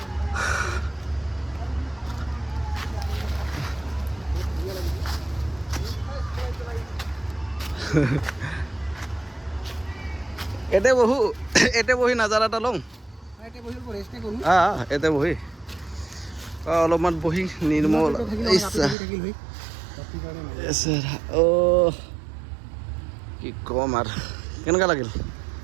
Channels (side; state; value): left; drops out; at 18.9 s